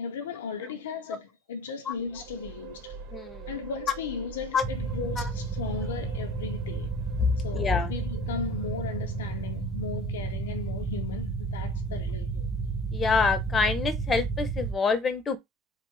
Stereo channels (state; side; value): normal; both; correlation 0.45